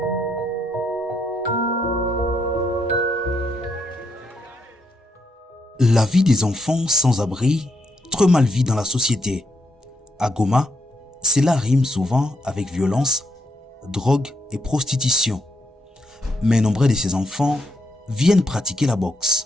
vie des enfants sans abri, trop mal vue dans la société. À Goma, cela rime souvent avec violence, drogue et prostitution. Mais nombreux de ces enfants viennent pratiquer la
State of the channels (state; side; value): normal; both; correlation 0.78